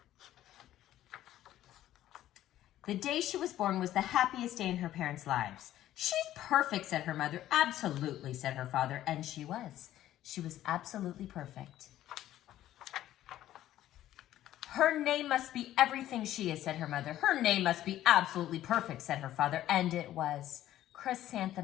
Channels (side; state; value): right; quieter; 13.1 dB